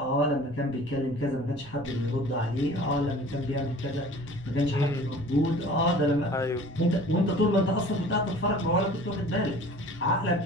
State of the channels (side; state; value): right; noise; rumble, 20 dB below the sound